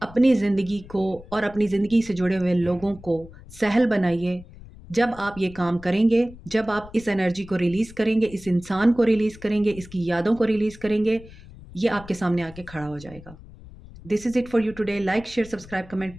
अपनी ज़िंदगी को और अपनी ज़िंदगी से जुड़े हुए लोगों को सहल बनाइए। जब आप ये काम करेंगे, जब आप इस एनर्जी को रिलीज़ करेंगे, इस इंसान को रिलीज़ करेंगे, इसकी यादों को रिलीज़ करेंगे, ये आपके सामने आके खड़ा हो जाएगा। This is it for you today. Like, share, subscribe, comment,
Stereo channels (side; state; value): left; noise; rumble, 19 dB below the sound